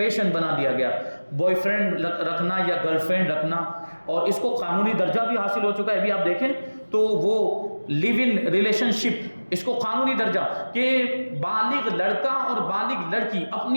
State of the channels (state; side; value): inverted; both; correlation -1.00